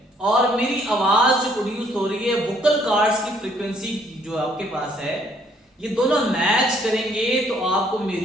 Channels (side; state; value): both; normal; correlation 0.65